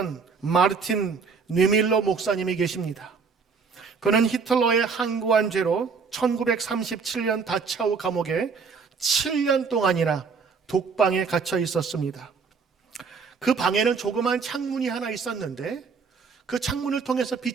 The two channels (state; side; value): quieter; left; 5.3 dB